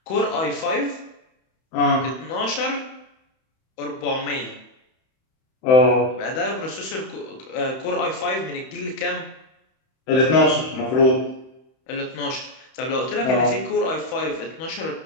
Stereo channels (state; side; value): late; right; 31 ms